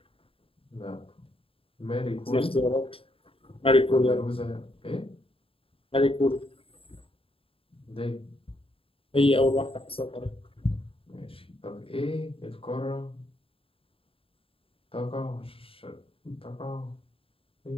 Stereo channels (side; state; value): right; late; 0.27 ms